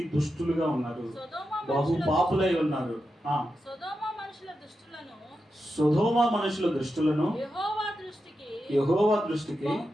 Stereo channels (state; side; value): normal; both; correlation 0.89